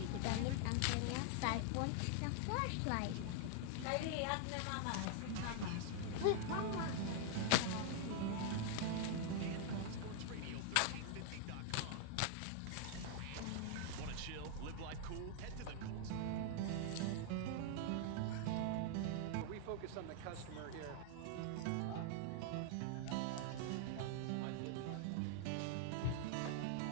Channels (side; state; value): both; different; correlation 0.00